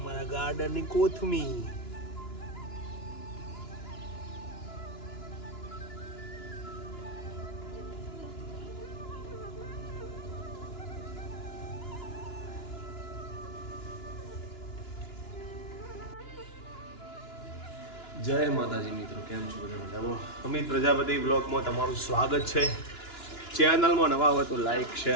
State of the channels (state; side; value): late; right; 2.9 ms